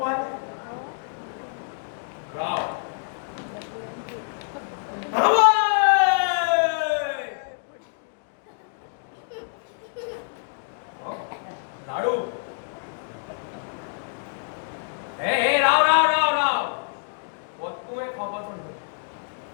राव लाडू हे राव राव राव राव तुम्ही खबर सांगतो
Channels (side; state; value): right; silent; digital silence